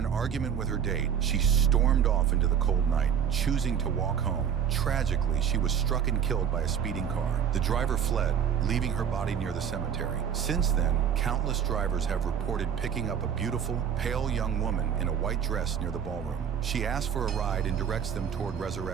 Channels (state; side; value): quieter; left; 8.2 dB